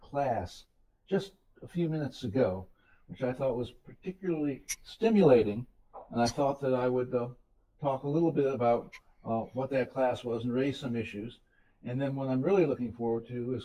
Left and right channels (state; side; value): identical; both; correlation 1.00